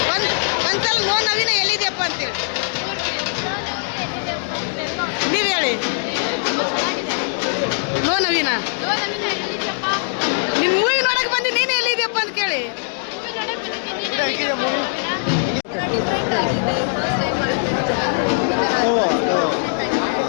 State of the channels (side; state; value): right; silent; digital silence